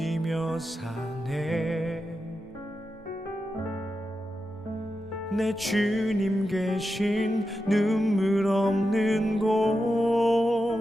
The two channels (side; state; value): both; normal; correlation 0.89